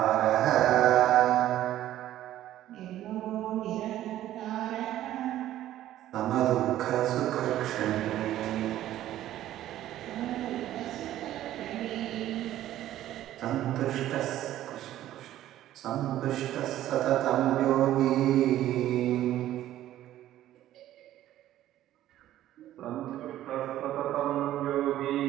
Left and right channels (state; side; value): quieter; left; 13.2 dB